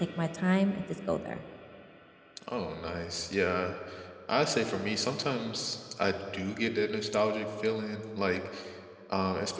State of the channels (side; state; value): both; identical; correlation 1.00